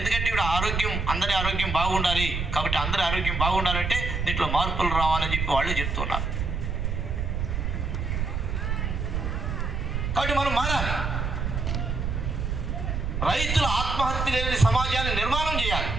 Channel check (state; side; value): noise; right; rumble, 1 dB below the sound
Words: ఇప్పుడు ఆరోగ్యం, అందరి ఆరోగ్యం బాగుండాలి. కాబట్టి అందరి ఆరోగ్యం బాగుండాలంటే దీంట్లో మార్పులు రావాలని చెప్పి వాళ్ళే చెప్తున్నారు. కాబట్టి మనం మారాలి. రైతుల ఆత్మహత్య లేని సమాజాన్ని నిర్మాణం చేయాలి.